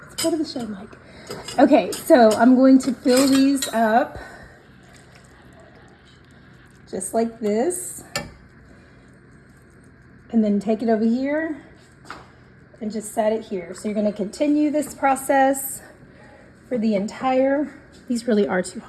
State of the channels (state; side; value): identical; both; correlation 1.00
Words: it's part of the show, Mike. Okay, so I'm going to fill these up just like this. And then take it over here and just set it here. So you're gonna continue this process for the entire, these really are too